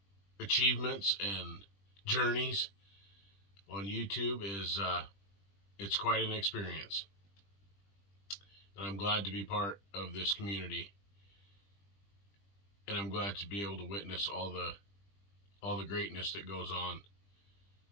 achievements and journeys on YouTube is it's quite an experience. And I'm glad to be part of this community. And I'm glad to be able to witness all the greatness that goes on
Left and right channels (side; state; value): right; late; 20 ms